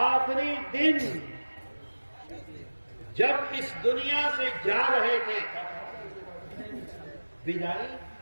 دن جب اس دنیا سے جا رہے تھے،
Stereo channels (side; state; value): both; inverted; correlation -1.00